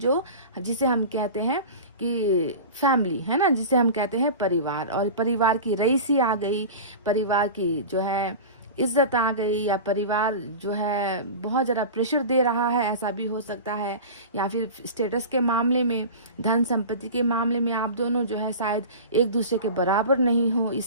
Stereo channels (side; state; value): both; inverted; correlation -0.32